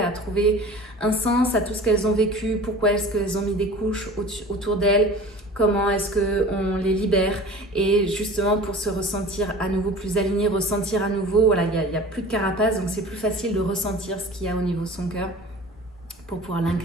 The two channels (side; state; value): both; normal; correlation 0.40